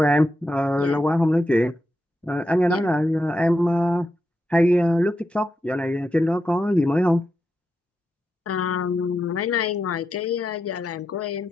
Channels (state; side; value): normal; both; correlation 0.86